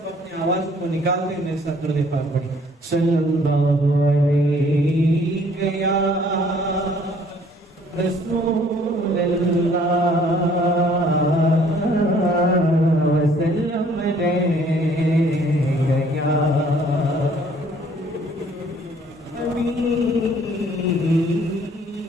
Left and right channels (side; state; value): both; normal; correlation 0.59